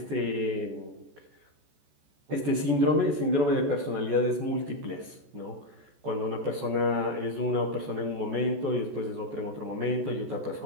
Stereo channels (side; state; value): left; late; 14 ms